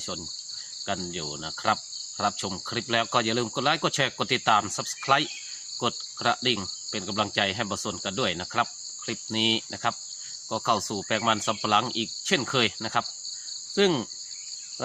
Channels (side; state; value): both; identical; correlation 1.00